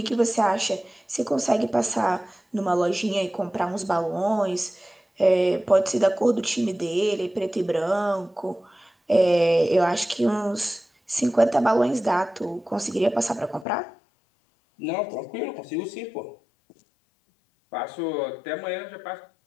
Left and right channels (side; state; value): right; drops out; at 13.7 s